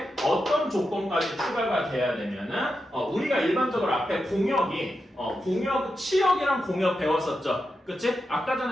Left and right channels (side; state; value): both; normal; correlation 0.88